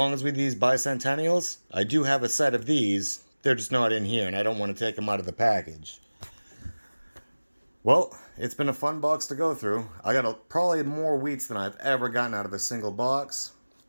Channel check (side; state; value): both; inverted; correlation -1.00